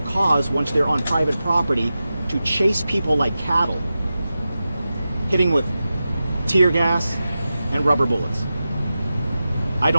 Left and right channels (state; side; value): inverted; both; correlation -0.93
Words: cause once they're on private property to chase people like cattle, hitting with tear gas and rubber bullets. I